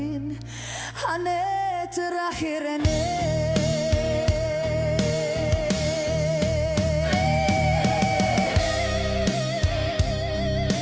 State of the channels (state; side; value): identical; both; correlation 1.00